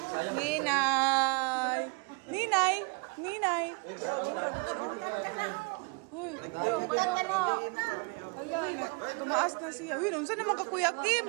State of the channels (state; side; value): quieter; left; 32.6 dB